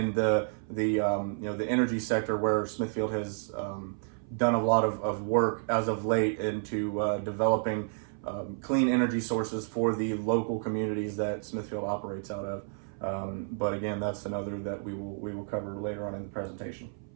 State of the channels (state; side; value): silent; left; 56 dB below the other